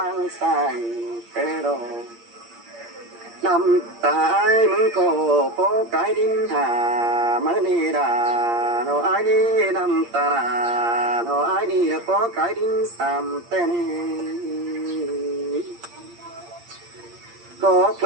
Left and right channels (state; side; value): late; left; 8.6 ms